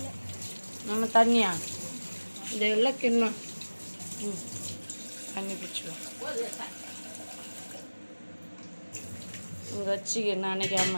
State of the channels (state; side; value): inverted; both; correlation -1.00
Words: நம்ம தண்ணியா இந்த எல்லாம் கிண்ணம் தண்ணி பிடிச்சிடும் இங்கே வச்சுக்க